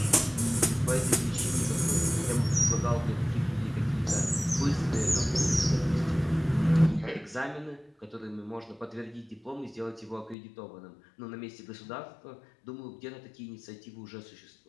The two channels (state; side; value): drops out; right; at 10.4 s